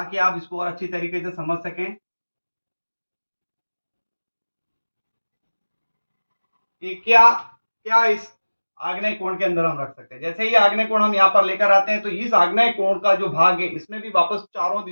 आप इसको और अच्छी तरीके से समझ सकें कि क्या क्या इस आग्नेय कोण के अंदर हम रख सकते हैं। जैसे ही आग्नेय कोण हम यहाँ पर लेकर आते हैं तो इस आग्नेय कोण का जो भाग है इसमें भी वापस चारों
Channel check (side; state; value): both; inverted; correlation -1.00